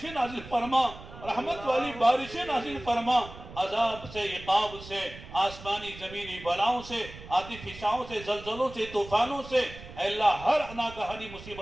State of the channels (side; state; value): right; noise; rumble, 15 dB below the sound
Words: نازل فرما، رحمت والی بارشیں نازل فرما، عذاب سے عقاب سے آسمانی زمینی بلاؤں سے آتش فشاؤں سے زلزلوں سے طوفانوں سے اے اللہ ہر ناگہانی